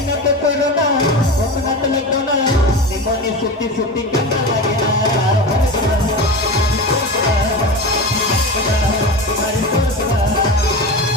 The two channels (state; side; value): normal; both; correlation 0.26